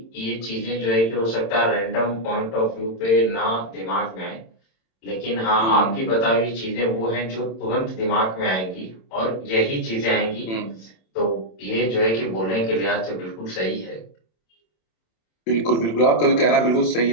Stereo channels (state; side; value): late; right; 27 ms